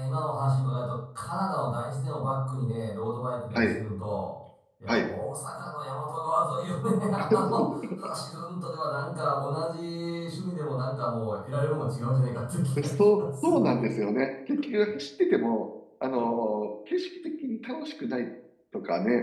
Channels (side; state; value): both; identical; correlation 1.00